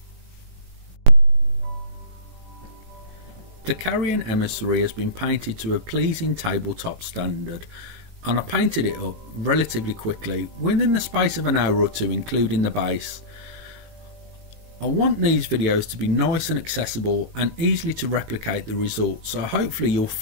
The Carrion Emissary has been painted to a pleasing tabletop standard, and I painted it up relatively quickly, within the space of an hour or two, including the base. I want these videos to be nice and accessible and easily to replicate the results, so hopefully you'll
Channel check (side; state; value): left; late; 18 ms